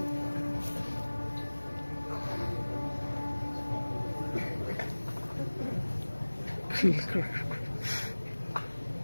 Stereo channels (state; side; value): inverted; both; correlation -1.00